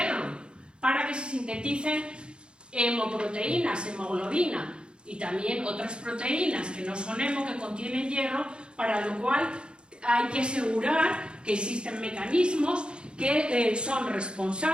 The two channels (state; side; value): late; left; 0.053 ms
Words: para que se sinteticen hemoproteínas, hemoglobina y también otras proteínas que no son hemo, que contienen hierro, para lo cual hay que asegurar que existen mecanismos que son